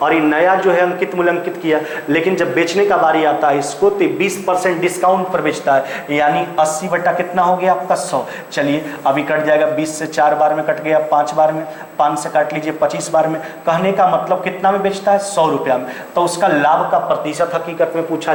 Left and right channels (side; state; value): both; identical; correlation 1.00